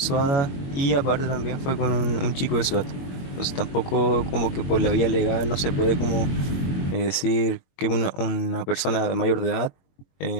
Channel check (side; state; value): right; late; 22 ms